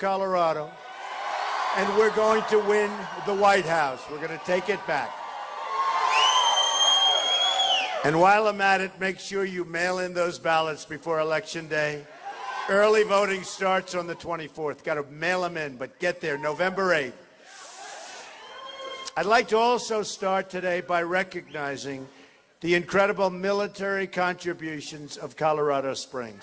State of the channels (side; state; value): both; identical; correlation 1.00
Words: and we're going to win the White House. We're going to take it back. And while I'm at it, make sure you mail in those ballots before Election Day. Early voting starts on the 24th. Got to mail them in, but get there November 8th. I'd like to also start today by recognizing the incredible military contributions of Colorado